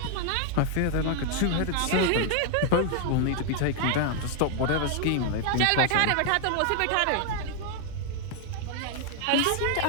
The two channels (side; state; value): both; different; correlation 0.00